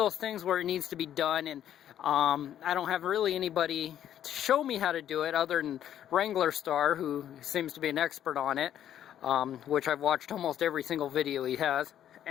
things where it needs to be done, and I don't have really anybody to show me how to do it other than Wrangler Star, who seems to be an expert on it, which I've watched almost every single video he has,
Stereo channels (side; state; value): right; quieter; 10.7 dB